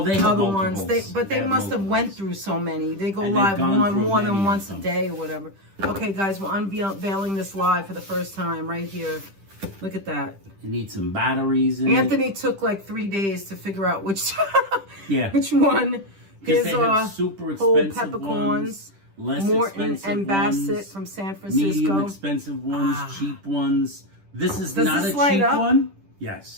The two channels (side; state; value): left; late; 10 ms